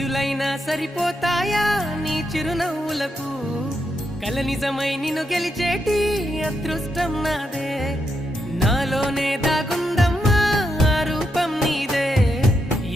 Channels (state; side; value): normal; both; correlation 0.82